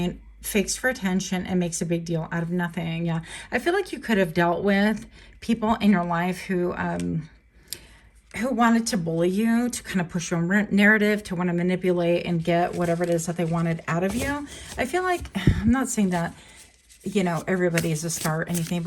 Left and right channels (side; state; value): both; identical; correlation 1.00